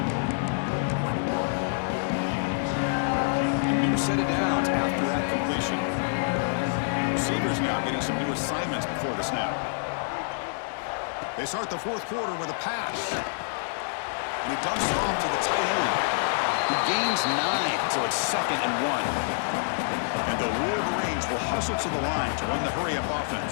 Set it down after that completion. Receivers now getting some new assignments before the snap. They start the 4th quarter with a pass. And he dumps it off to the tight end, who gains 9, so it's 2nd and 1. And the Wolverines will hustle to the line to run the hurry-up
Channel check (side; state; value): right; silent; 60 dB below the other